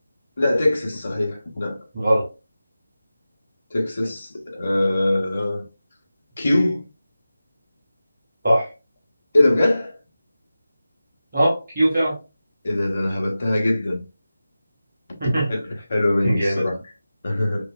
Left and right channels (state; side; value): inverted; both; correlation -0.95